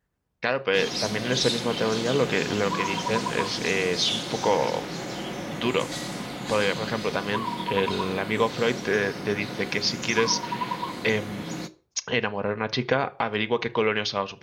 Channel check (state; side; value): identical; both; correlation 1.00